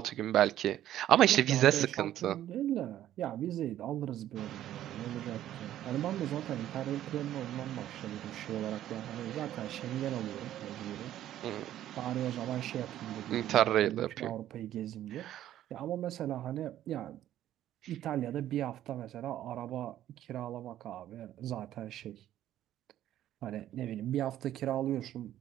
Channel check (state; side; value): quieter; left; 12.4 dB